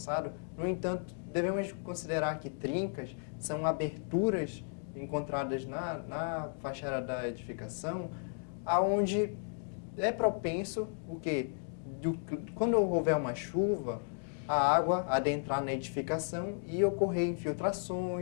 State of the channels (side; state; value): right; silent; 55 dB below the other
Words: no entanto, devemos considerar que trincas são aberturas encontradas na fachada da edificação, aonde é propenso o quê? Quando houver uma chuva, a água adentrar na edificação e ocorrer